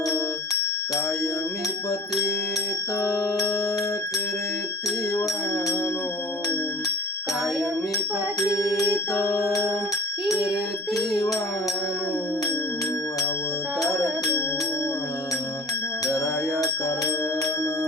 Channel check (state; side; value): normal; both; correlation 0.45